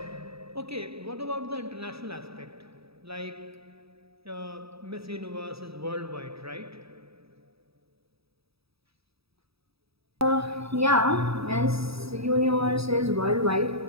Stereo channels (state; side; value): late; left; 0.77 ms